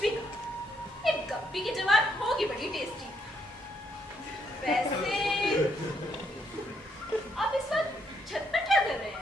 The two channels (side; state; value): both; normal; correlation 0.74